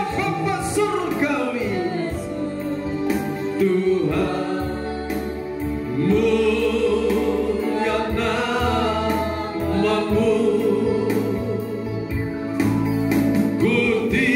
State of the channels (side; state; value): both; identical; correlation 1.00